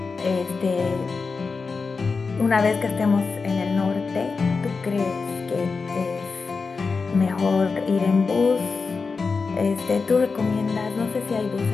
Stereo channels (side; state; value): right; quieter; 4.6 dB